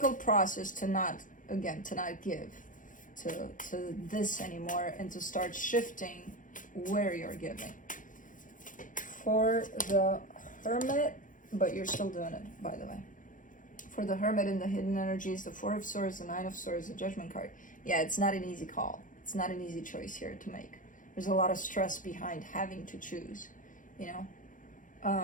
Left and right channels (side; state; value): right; late; 0.38 ms